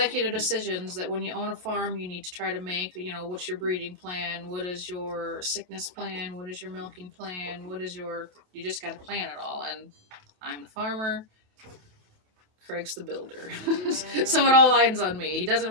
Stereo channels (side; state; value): left; late; 28 ms